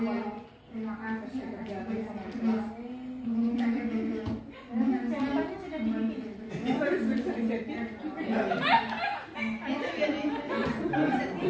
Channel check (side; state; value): both; identical; correlation 1.00